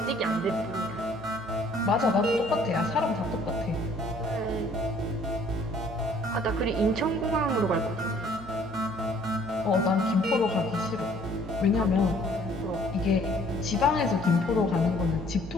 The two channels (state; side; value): noise; left; hum, 20 dB below the sound